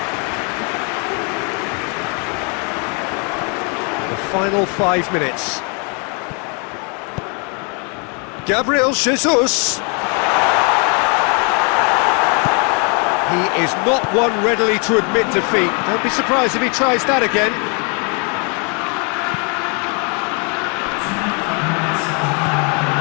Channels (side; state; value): right; quieter; 36.2 dB